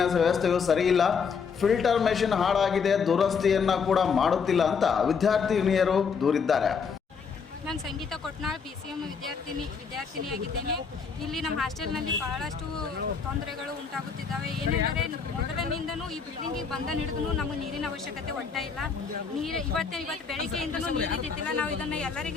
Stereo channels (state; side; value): quieter; right; 5.9 dB